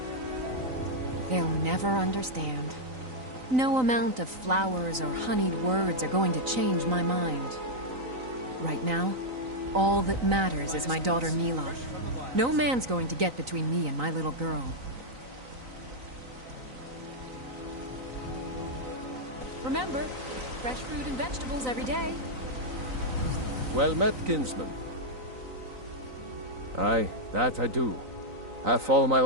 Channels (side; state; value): left; late; 3.9 ms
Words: They'll never understand. No amount of flowers or honeyed words are going to change my mind. Right now, all that matters is my daughter Mila. No man's going to get between me and my little girl. Remember, fresh fruit and vegetables every day. Well met, kinsman. Aye, that I do. Half all my